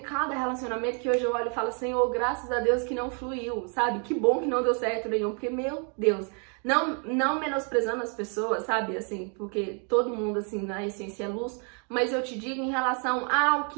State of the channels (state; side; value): quieter; left; 39.8 dB